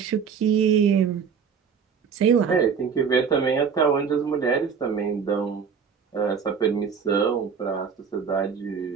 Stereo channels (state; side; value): quieter; left; 6.5 dB